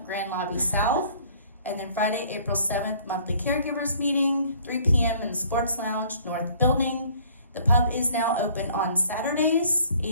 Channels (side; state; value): both; inverted; correlation -0.56